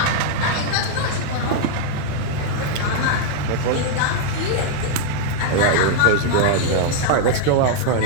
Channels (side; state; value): both; different; correlation 0.00